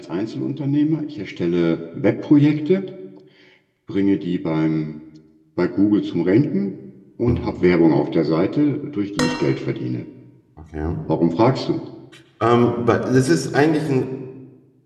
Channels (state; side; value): identical; both; correlation 1.00